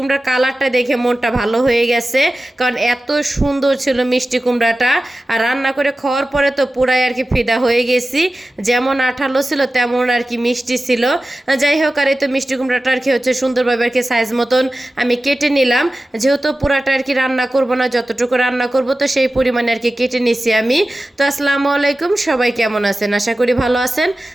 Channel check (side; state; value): both; normal; correlation 0.95